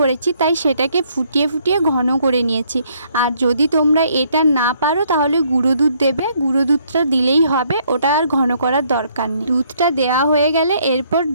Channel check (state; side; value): inverted; both; correlation -0.67